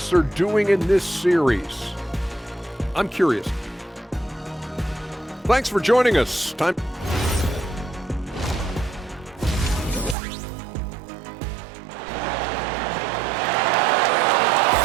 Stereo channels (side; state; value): left; drops out; at 10.2 s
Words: are doing in this series, I'm curious. Thanks for joining us. Time.